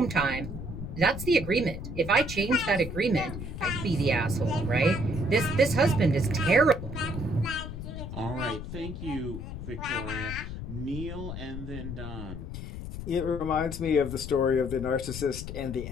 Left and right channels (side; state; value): left; noise; rumble, 8 dB below the sound